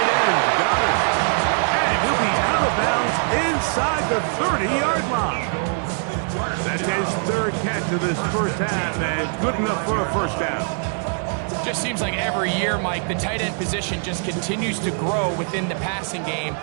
end, Goddard. And he'll be out of bounds inside the 30-yard line. That's his 3rd catch of this first half, and good enough for a first down. Just seems like every year, Mike, the tight end position just continues to grow within the passing game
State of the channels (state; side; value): silent; left; 58 dB below the other